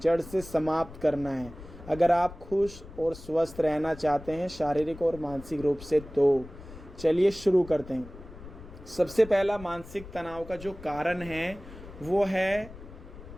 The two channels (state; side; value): noise; left; rumble, 16 dB below the sound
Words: से समाप्त करना है अगर आप खुश और स्वस्थ रहना चाहते हैं शारीरिक और मानसिक रूप से। तो चलिए शुरू करते हैं। सबसे पहला मानसिक तनाव का जो कारण है वो है